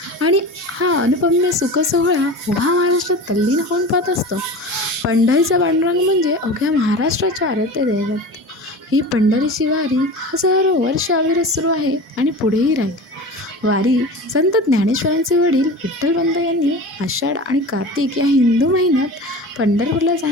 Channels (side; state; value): both; normal; correlation 0.33